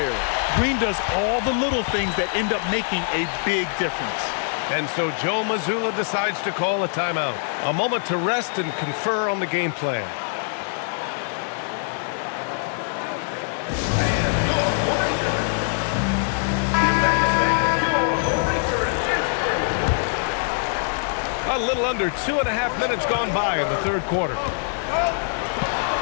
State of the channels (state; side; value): silent; right; 63 dB below the other